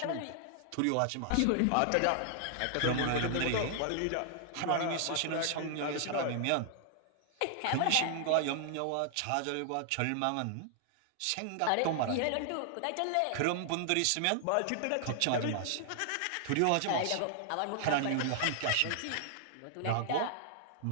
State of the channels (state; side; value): different; both; correlation -0.01